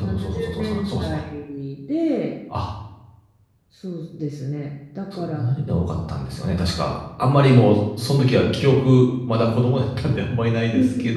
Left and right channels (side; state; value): both; identical; correlation 1.00